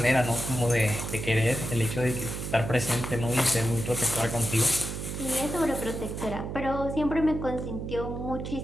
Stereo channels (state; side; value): noise; right; hum, 6 dB below the sound